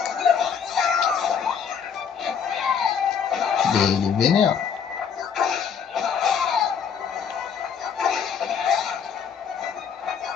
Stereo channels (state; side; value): quieter; right; 7.1 dB